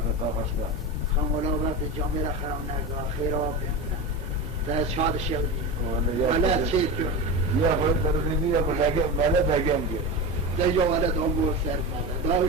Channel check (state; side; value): normal; both; correlation 0.23